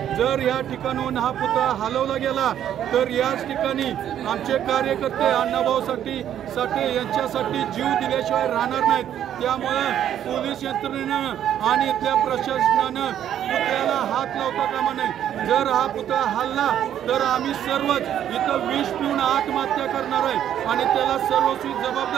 जर या ठिकाणाहून हा पुतळा हलवला गेला तर याच ठिकाणी आमचे कार्यकर्ते अण्णाभाऊ साठे यांच्यासाठी जीव दिल्याशिवाय राहणार नाहीत। त्यामुळे पोलीस यंत्रणेनं आणि इथल्या प्रशासनानं पुतळ्याला हात लावता कामा नये। जर हा पुतळा हल्ला तर आम्ही सर्वच इथं विष पिऊन आत्महत्या करणार आहे आणि त्याला सर्वस्वी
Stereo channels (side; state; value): left; quieter; 10.4 dB